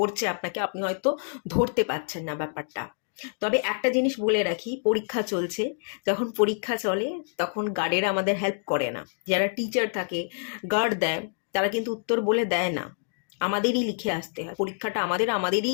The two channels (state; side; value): silent; right; digital silence